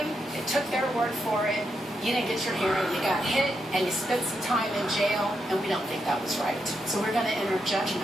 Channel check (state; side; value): normal; both; correlation 0.83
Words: they took their word for it. You didn't get your hearing, you got hit, and you spent some time in jail, and we don't think that was right. So we're going to enter